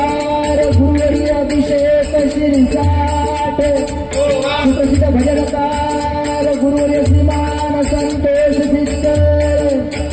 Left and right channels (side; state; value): both; identical; correlation 1.00